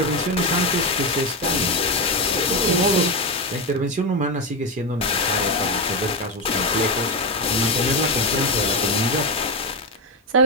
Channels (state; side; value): normal; both; correlation 0.10